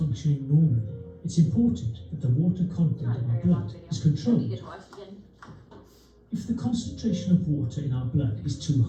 normally, it's important that the water content of our blood is We controlled. get to watch it again. If the concentration of water in our blood is too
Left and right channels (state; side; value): identical; both; correlation 1.00